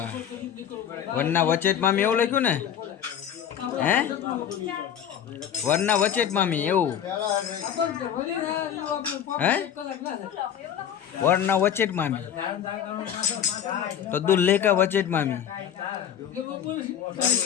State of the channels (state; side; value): quieter; right; 9.3 dB